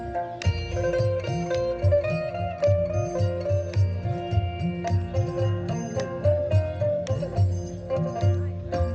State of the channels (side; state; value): both; identical; correlation 1.00